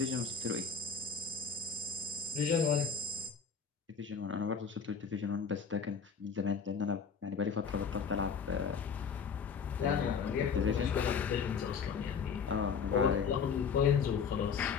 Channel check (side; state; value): right; quieter; 6.0 dB